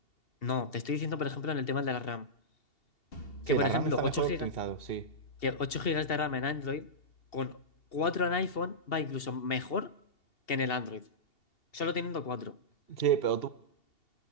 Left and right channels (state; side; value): late; right; 2.7 ms